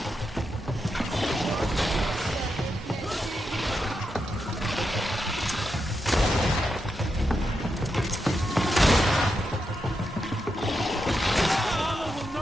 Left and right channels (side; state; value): both; normal; correlation 0.85